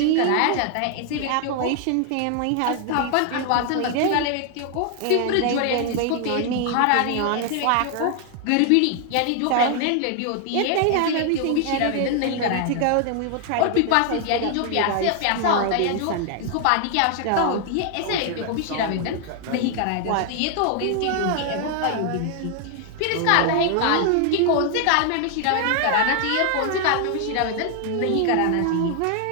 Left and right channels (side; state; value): both; different; correlation 0.00